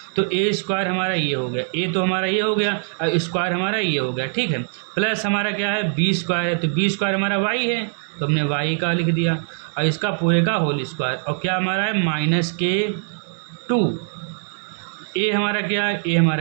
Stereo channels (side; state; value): left; silent; digital silence